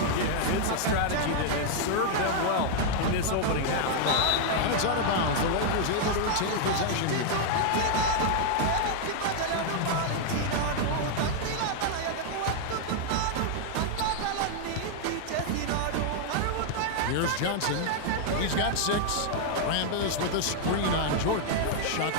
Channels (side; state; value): both; different; correlation -0.01